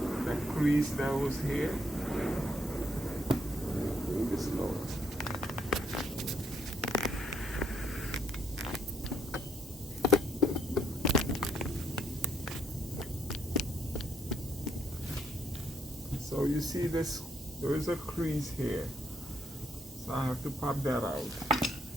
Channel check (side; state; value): both; normal; correlation 0.72